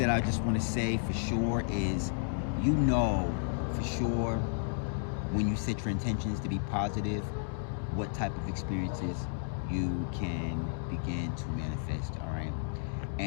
I just want to say for sure is, you know for sure, when you set your intentions to be positive, what type of experiences you can begin to manifest. All right,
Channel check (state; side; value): silent; right; digital silence